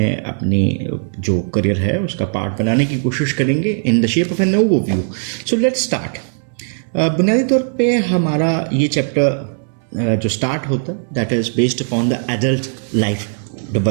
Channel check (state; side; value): silent; left; 67 dB below the other